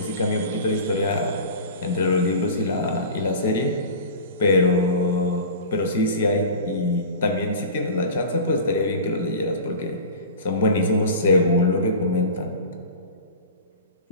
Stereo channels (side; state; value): both; inverted; correlation -0.35